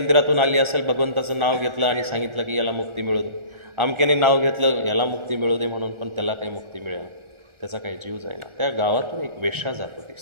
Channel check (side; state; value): left; late; 1.4 ms